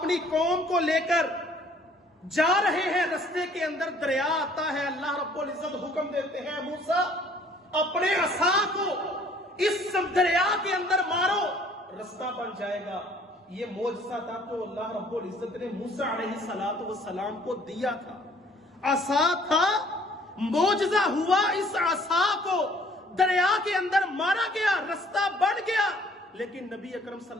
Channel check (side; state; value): both; normal; correlation 0.58